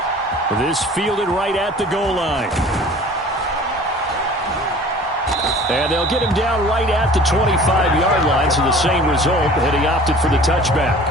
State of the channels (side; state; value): both; normal; correlation 0.46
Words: This fielded right at the goal line. And they'll get him down right at the 25-yard line, so the same result, and he opted for the touchback.